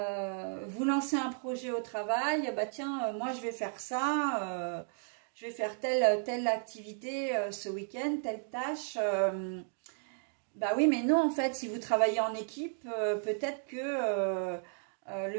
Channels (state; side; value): silent; left; 55 dB below the other